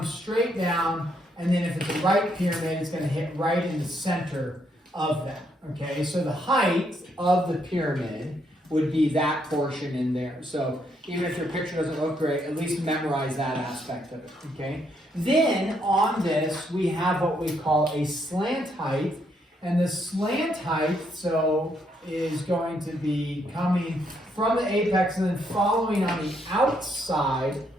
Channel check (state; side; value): normal; both; correlation 0.74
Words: straight down, and then if it's a right pyramid, it's going to hit right in the center of that. Okay, so the height of the pyramid would be that portion in there. So even if your picture doesn't look great, at least memorize that aspect of it, okay? Then on this, we have what we call a slant height. And the slant height, so, is going to be coming from the apex and then following on the outside